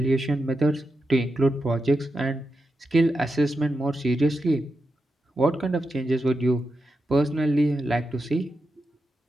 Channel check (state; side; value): normal; both; correlation 0.88